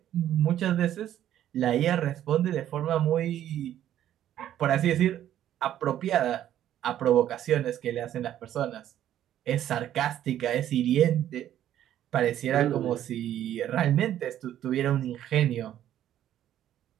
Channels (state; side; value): quieter; left; 11.6 dB